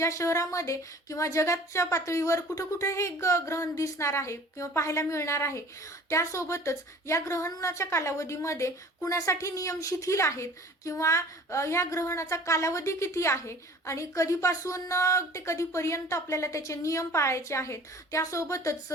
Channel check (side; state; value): both; normal; correlation 0.46